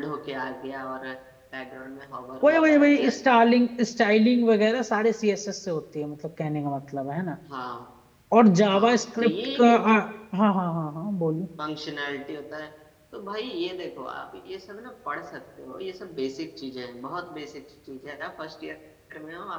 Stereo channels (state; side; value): identical; both; correlation 1.00